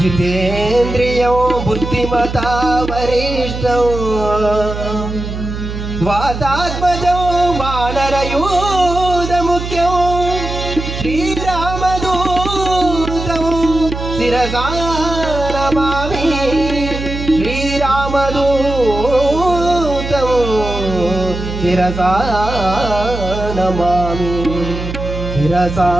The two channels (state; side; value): noise; right; hum, 6 dB below the sound